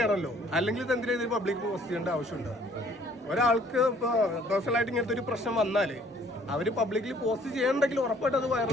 അല്ലെങ്കിൽ ഇത് എന്തിനാ ഇത് പബ്ലിക് പോസ്റ്റ് ചെയ്യേണ്ട ആവശ്യമുണ്ടോ? ഒരാൾക്ക് ഇപ്പോൾ പേഴ്സണലായിട്ട് ഇങ്ങനത്തെ ഒരു പ്രശ്നം വന്നാൽ അവർ പബ്ലിക്കലി പോസ്റ്റ് ചെയ്യണമെങ്കിൽ ഉറപ്പായിട്ട് അത്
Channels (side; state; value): both; normal; correlation 0.59